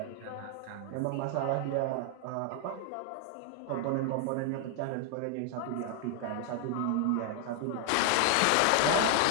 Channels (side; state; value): both; different; correlation 0.00